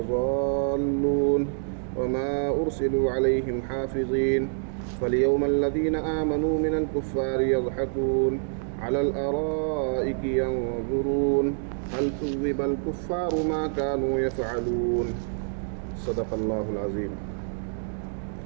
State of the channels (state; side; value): silent; left; digital silence